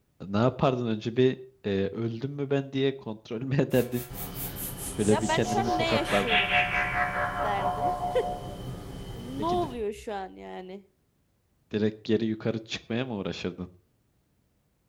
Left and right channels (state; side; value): identical; both; correlation 1.00